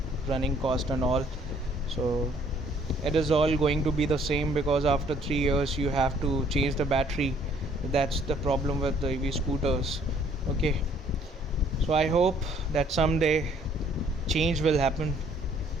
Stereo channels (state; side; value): normal; both; correlation 0.61